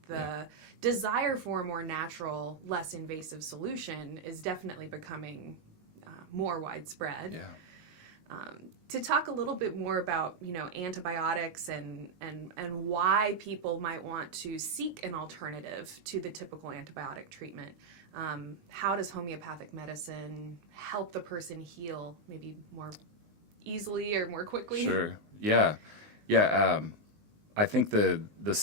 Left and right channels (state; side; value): late; left; 19 ms